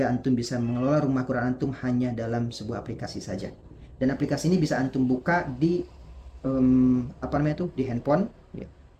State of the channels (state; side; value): identical; both; correlation 1.00